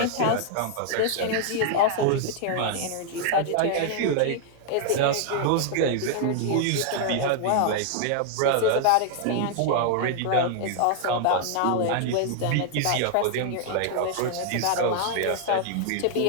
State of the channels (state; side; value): different; both; correlation 0.00